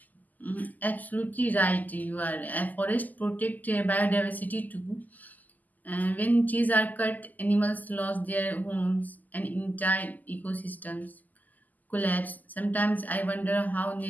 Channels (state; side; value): late; right; 0.082 ms